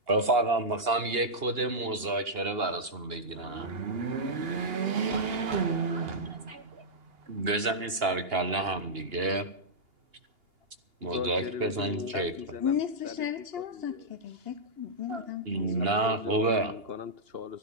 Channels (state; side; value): late; left; 2.8 ms